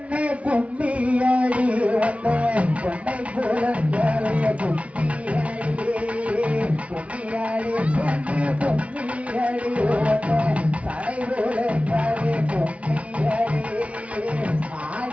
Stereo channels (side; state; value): left; late; 0.064 ms